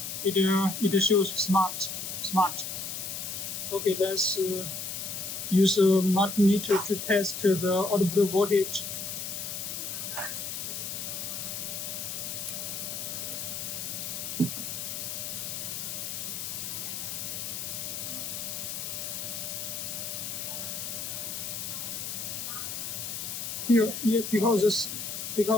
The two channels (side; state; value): left; noise; hiss, 5 dB below the sound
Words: It shows smart. Okay, let's use a multimeter to test the output voltage. Here, because